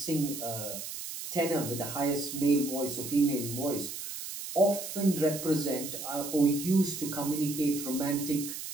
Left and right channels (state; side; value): noise; right; hiss, 8 dB below the sound